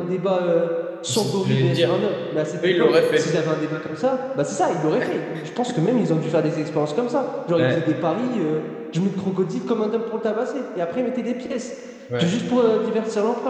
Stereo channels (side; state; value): both; identical; correlation 1.00